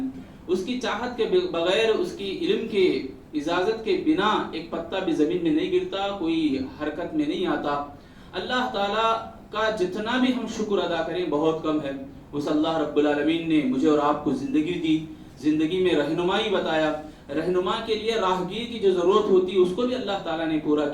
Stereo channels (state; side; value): identical; both; correlation 1.00